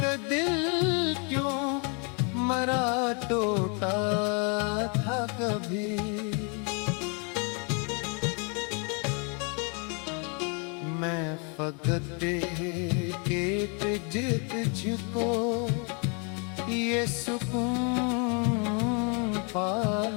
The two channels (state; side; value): quieter; right; 36.1 dB